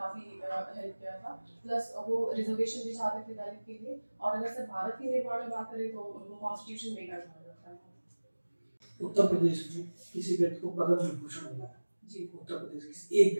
हेल्प किया था। प्लस वो रिजर्वेशन भी चाहते थे दलित के लिए। और अगर सर भारत के निर्माण में बात करें तो उनको कॉन्स्टिट्यूशन मेकर कहा जाता है। उत्तर प्रदेश में किसी व्यक्ति को पद्म विभूषण मिला है जी। उत्तर प्रदेश के एक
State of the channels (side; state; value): both; inverted; correlation -1.00